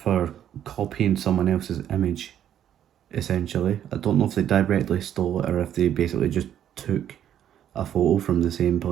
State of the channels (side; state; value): left; quieter; 10.3 dB